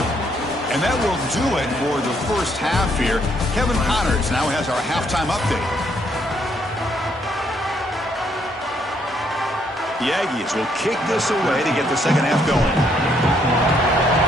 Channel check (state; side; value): normal; both; correlation 0.71